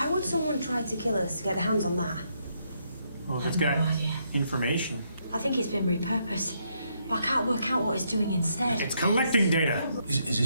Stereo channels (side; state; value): both; inverted; correlation -0.76